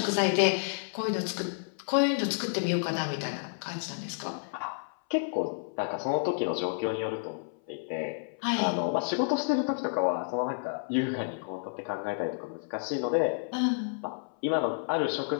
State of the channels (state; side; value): silent; right; 58 dB below the other